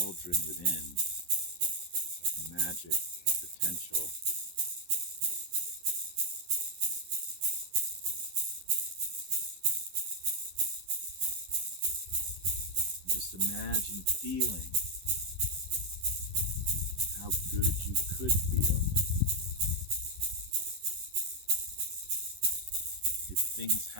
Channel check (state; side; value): late; left; 11 ms